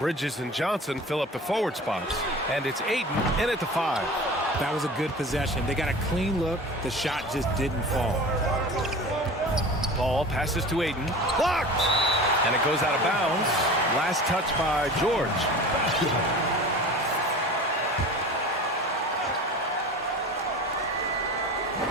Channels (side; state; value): both; normal; correlation 0.36